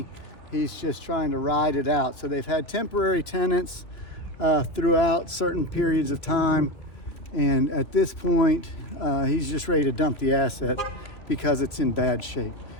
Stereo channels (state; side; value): late; right; 2.9 ms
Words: He's just trying to ride it out. So they've had temporary tenants throughout certain periods of time. And at this point, he's just ready to dump the asset because it's in bad shape.